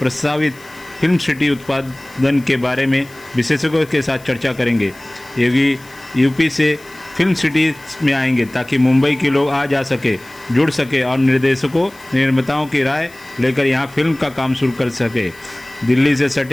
फिल्म सिटी उत्पादन के बारे में विशेषज्ञों के साथ चर्चा करेंगे। योगी यूपी से फिल्म सिटी में आएंगे ताकि मुंबई के लोग आ जा सके, जुड़ सके और निर्देशकों निर्माताओं की राय लेकर यहां फिल्म का काम शुरू कर सके। दिल्ली से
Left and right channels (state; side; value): noise; left; hiss, 24 dB below the sound